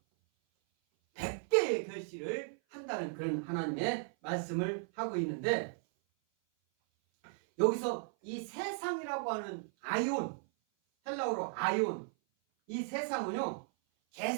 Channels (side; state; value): left; silent; 54 dB below the other